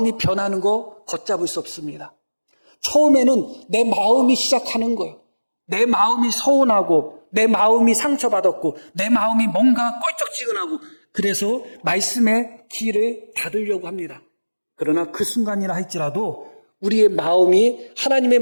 변하는 거 걷잡을 수 없습니다. 처음에는 내 마음이 시작하는 거예요. 내 마음이 서운하고 내 마음이 상처받았고 내 마음이 뭔가 껄쩍지근하고 그래서 말씀의 길을 닫으려고 합니다. 그러나 그 순간이라 할지라도 우리의 마음이 하나님의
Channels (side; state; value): both; inverted; correlation -1.00